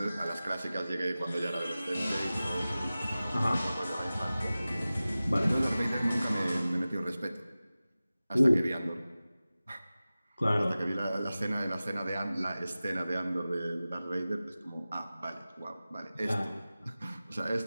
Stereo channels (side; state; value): both; inverted; correlation -0.96